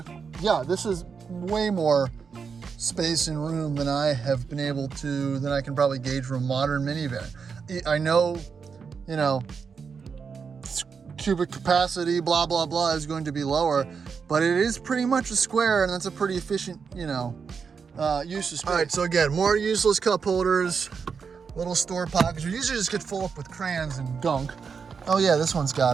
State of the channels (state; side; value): quieter; left; 5.9 dB